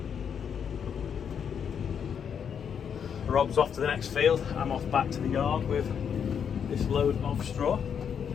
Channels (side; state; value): right; quieter; 7.6 dB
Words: Rob's off to the next field. I'm off back to the yard with this load of straw.